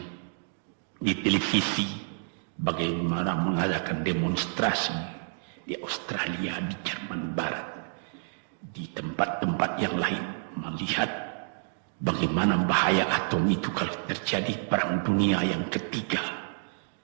televisi bagaimana mengadakan demonstrasi di Australia, di Jerman Barat, di tempat-tempat yang lain, melihat bagaimana bahaya atom itu kalau terjadi perang dunia yang ketiga.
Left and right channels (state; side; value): silent; left; digital silence